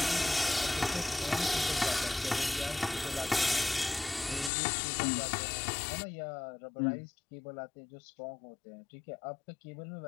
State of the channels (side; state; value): right; drops out; at 4.5 s